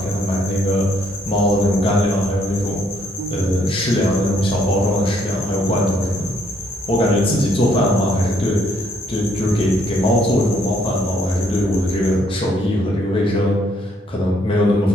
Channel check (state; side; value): normal; both; correlation 0.69